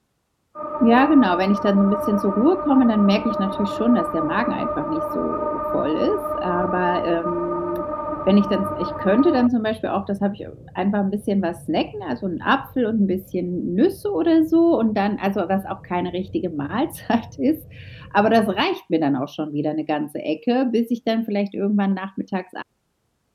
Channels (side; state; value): both; identical; correlation 1.00